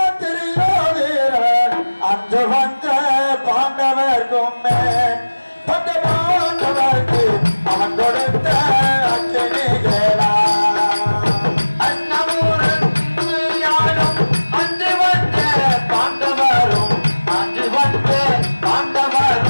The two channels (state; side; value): inverted; both; correlation -1.00